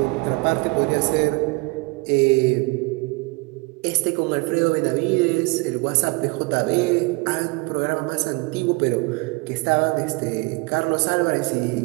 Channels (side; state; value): left; quieter; 27.1 dB